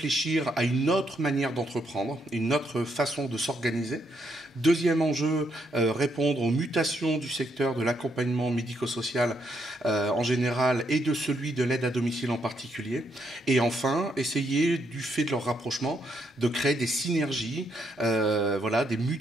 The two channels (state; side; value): normal; both; correlation 0.76